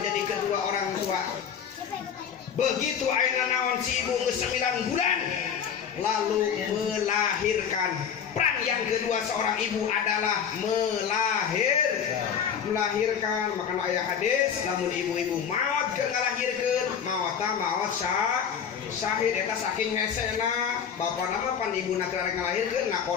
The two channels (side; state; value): right; quieter; 7.6 dB